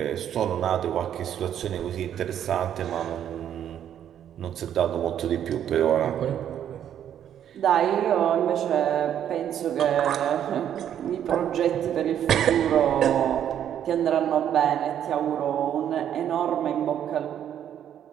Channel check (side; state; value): left; quieter; 9.9 dB